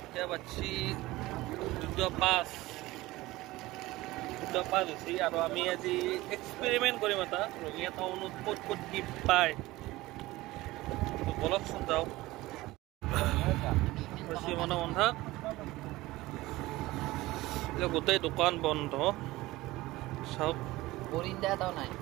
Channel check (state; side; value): quieter; left; 18.8 dB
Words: এতিয়া বাজি 2:05 হৈছে আৰু আমি আজি এক্সপেৰিমেন্ট কৰিম এটা ৰঙিয়া টাউনত ক'ত ক'ত কি পায় বলকচোন যাওক বেছি মানে বন্ধা গোটেই দোকান বন্ধ চাওক